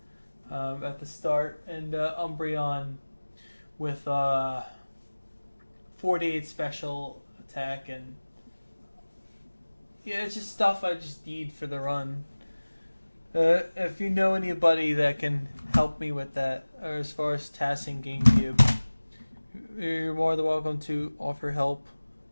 at the start, and Umbreon with 48 special attack, and yeah, it's just stuff I just need for the run. If you know anybody that can help me with that, or as far as tasking GameCube, you're more than welcome to offer help.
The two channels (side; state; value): both; inverted; correlation -1.00